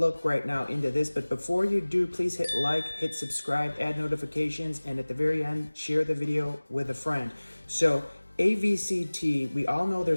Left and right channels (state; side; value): inverted; both; correlation -1.00